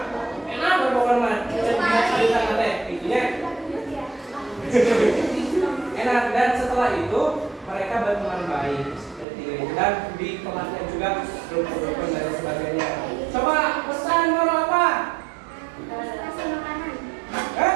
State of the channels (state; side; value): drops out; left; at 9.2 s